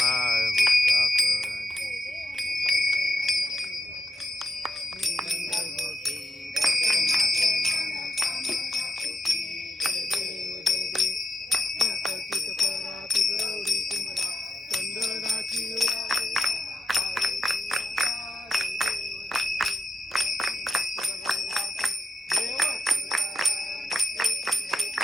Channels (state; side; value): normal; both; correlation 0.87